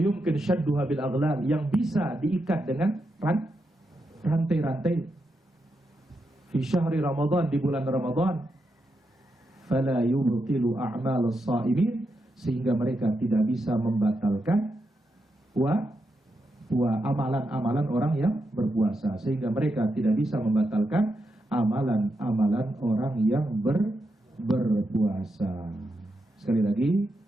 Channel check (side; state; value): both; normal; correlation 0.85